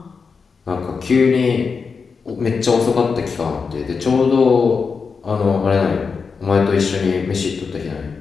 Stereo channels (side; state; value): right; quieter; 5.2 dB